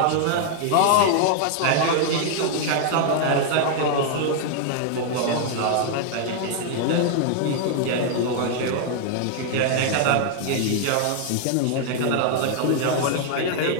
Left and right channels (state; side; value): different; both; correlation 0.00